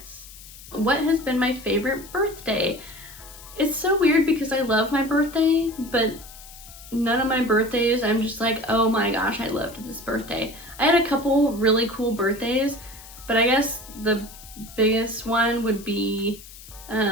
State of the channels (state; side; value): noise; left; hiss, 18 dB below the sound